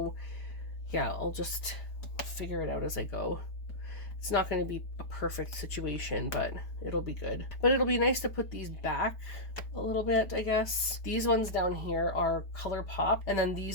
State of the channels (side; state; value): right; late; 4.8 ms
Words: yeah, I'll just figure it out as I go. It's not going to be a perfect situation, but it'll be good. But it'll be nice to put these back a little bit, I guess. These ones down here are ColourPop, and then